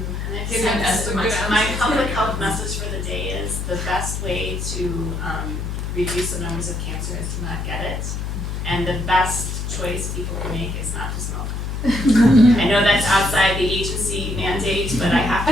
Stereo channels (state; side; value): noise; left; hum, 4 dB below the sound